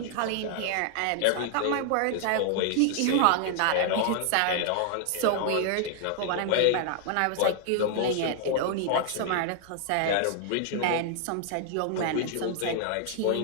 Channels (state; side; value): different; both; correlation 0.00